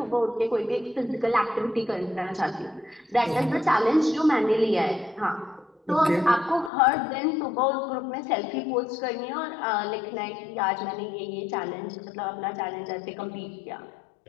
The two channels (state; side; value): drops out; right; at 6.7 s